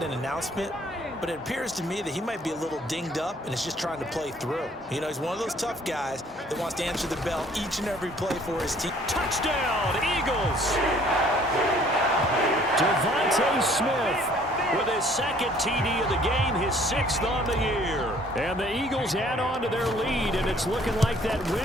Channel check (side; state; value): both; normal; correlation 0.58